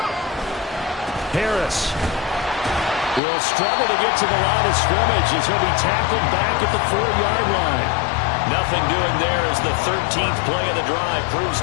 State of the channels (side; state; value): right; drops out; at 3.2 s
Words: Harris will struggle to get to the line of scrimmage as he'll be tackled back at the 4-yard line. Nothing doing there as the 13th play of the drive proves